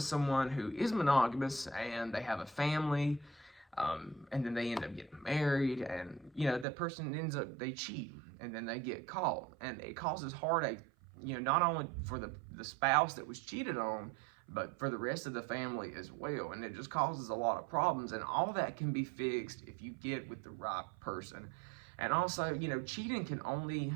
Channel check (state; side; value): drops out; left; at 6.7 s